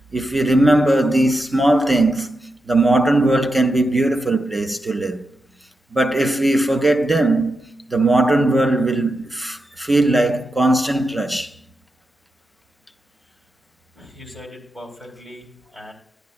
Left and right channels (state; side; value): normal; both; correlation 0.88